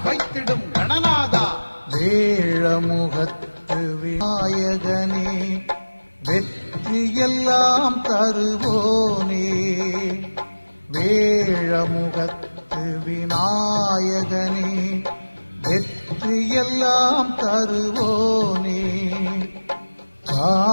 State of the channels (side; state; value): both; inverted; correlation -1.00